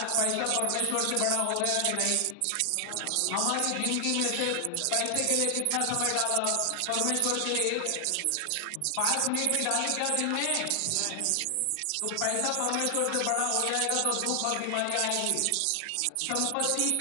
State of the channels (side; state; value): both; different; correlation 0.00